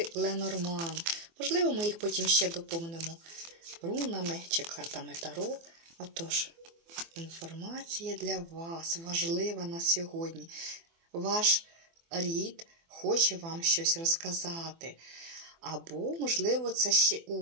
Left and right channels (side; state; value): left; late; 24 ms